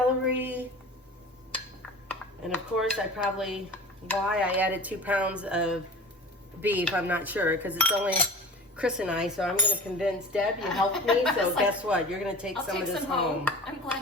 And of course, why I added 2 pounds of beef, I'm not sure, because it's only Chris and I, so I'm going to convince Deb, you helped me, so guess what? You're going to take some of this home. I'm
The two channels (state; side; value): normal; both; correlation 0.37